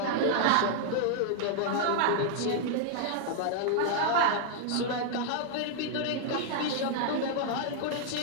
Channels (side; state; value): both; different; correlation 0.00